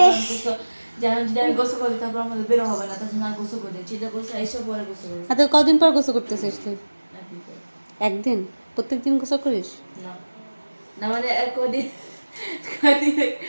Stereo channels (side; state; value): both; inverted; correlation -1.00